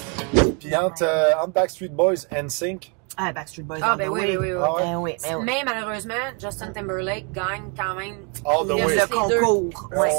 Puis entre Backstreet Boys and NSYNC, Ah, Backstreet Boys. Ah, all ben the oui, way. oui, oui. Ah ouais? Ben oui, ben oui. Mais malheureusement, Justin Timberlake gagne quand même. All the Il way. reste Le les deux. concours. C'est Ouais,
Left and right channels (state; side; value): quieter; left; 35.9 dB